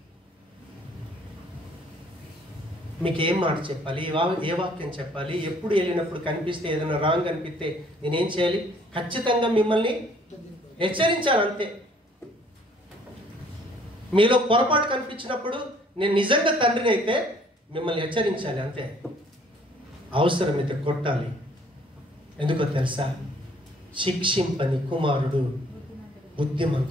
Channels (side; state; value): both; normal; correlation 0.59